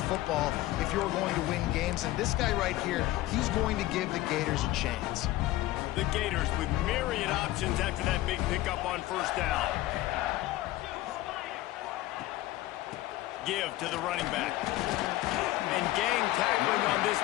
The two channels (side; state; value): right; quieter; 16.4 dB